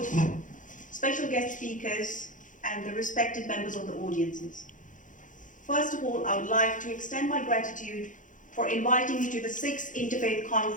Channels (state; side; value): late; right; 0.37 ms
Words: special guest speakers, and the respected members of the audiences. First of all, I would like to extend my gratitude for inviting me to the 6th Interfaith